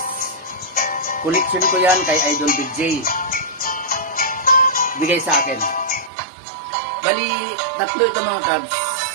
Collection ko yan kay Idol Big J. Bigay sa akin. Bali, tatlo ito mga Cubs.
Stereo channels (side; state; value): left; drops out; at 6.1 s